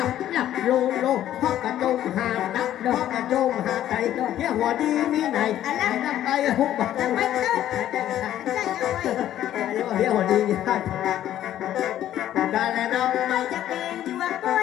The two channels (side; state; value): right; quieter; 12.1 dB